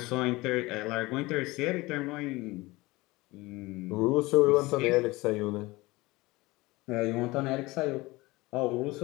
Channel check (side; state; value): right; quieter; 21.4 dB